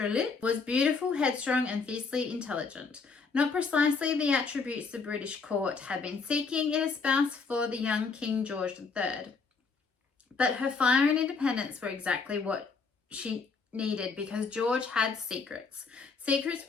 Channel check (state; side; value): quieter; right; 4.8 dB